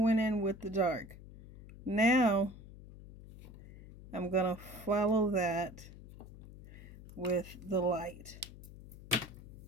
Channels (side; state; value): left; noise; hum, 16 dB below the sound